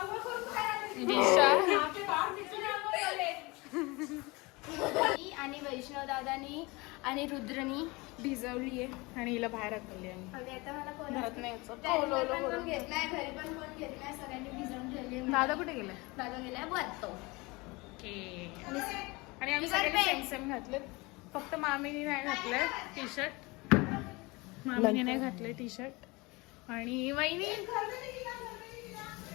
आणि वैष्णव दादानी आणि रुद्रनी भिजवली आहे आणि हिला बाहेर हकलली आहे. आणि आता मला घरात नाही यायचं. पण घेतलाय, घरी पण कोण घेतलाय, सगळ्यांनी भिजवून ठेवली. दादा कुठे गेलाय? दादा गेलाय वरतो. आणि आम्ही सगळ्यांनी सेम सेम घातले. फक्त मामीने नाही घातलंय टी शर्ट. मामीने नाही घातलंय टी शर्ट. आणि वहिनीने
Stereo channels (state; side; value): quieter; right; 24.6 dB